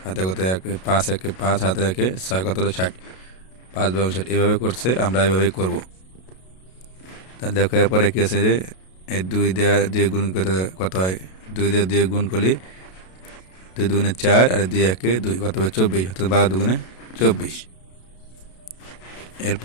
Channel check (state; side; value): late; right; 32 ms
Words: হাতে কত 1, 5 1 5, হাতে 1 6, কত হলো 60, 5 12 60 এভাবে করছে, আমরা এভাবেই করব। তাহলে দেখো এরপরে কি আছে, যে এই 2 দিয়ে 2 গুণ করতে কত হয়, 2 দিয়ে 2 গুণ করলে 2 2 4, আর 2 1 2, কত হবে 24, অর্থাৎ 12 2 24।